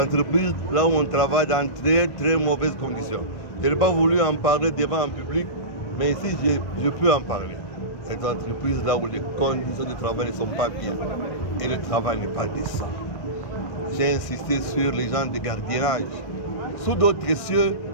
là où on travaille dans très très mauvaises conditions. Je n'ai pas voulu en parler devant un public, mais ici je peux en parler. Les entreprises, là où les conditions de travail ne sont pas bien et le travail n'est pas décent. J'ai insisté sur les gens de gardiennage. Sous d'autres cieux,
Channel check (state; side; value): late; right; 1.6 ms